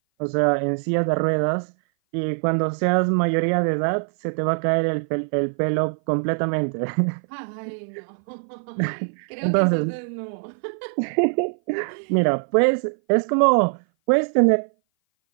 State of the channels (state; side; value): silent; left; 58 dB below the other